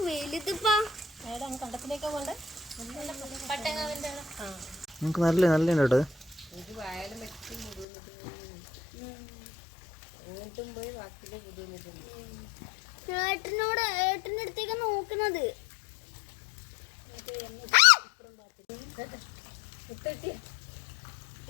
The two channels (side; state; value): right; drops out; at 7.9 s